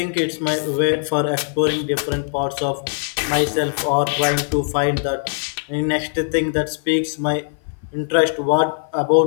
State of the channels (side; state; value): right; silent; 56 dB below the other